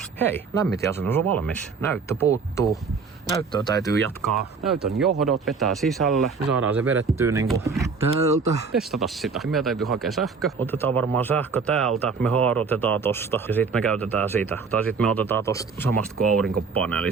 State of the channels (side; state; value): left; quieter; 5.0 dB